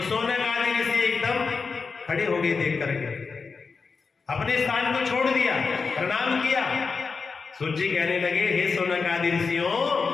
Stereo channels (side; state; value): right; quieter; 4.9 dB